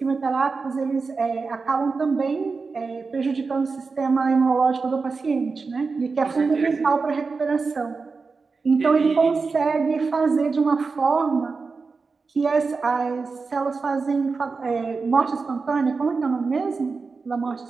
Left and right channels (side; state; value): left; quieter; 4.5 dB